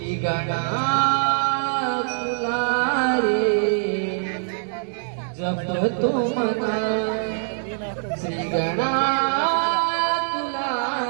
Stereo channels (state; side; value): silent; left; 58 dB below the other